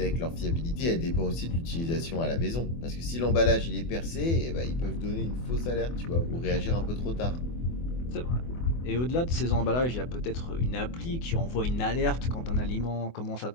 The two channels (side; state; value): right; late; 24 ms